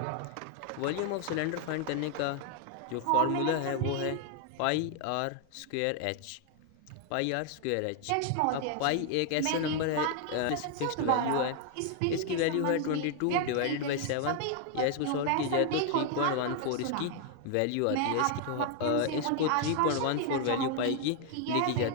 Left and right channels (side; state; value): both; different; correlation 0.00